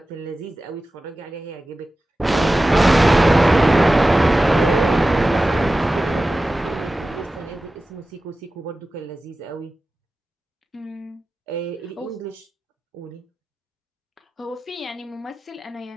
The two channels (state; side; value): normal; both; correlation 0.95